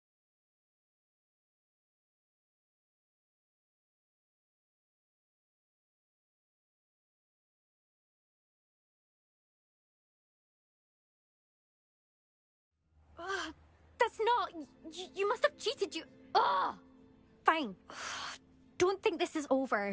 That's not... You must have cheated, you... Ugh! Fine. Don't think this is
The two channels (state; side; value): identical; both; correlation 1.00